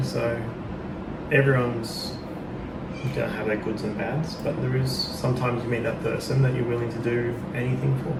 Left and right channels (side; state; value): both; identical; correlation 1.00